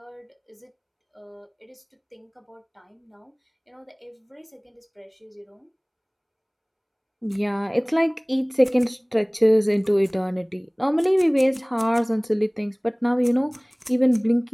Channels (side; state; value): both; identical; correlation 1.00